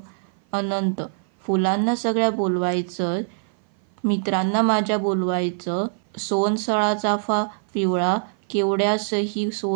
अनंत. फुलांना सगळ्या बोलवायचं, मित्रांना माझ्या बोलवायचं. सोनसळा चाफा पिवळा, केवड्यासही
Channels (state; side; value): silent; left; 56 dB below the other